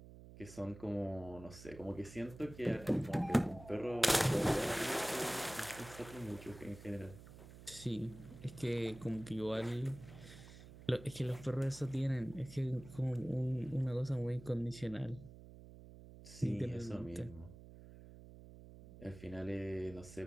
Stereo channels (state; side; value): noise; right; hum, 16 dB below the sound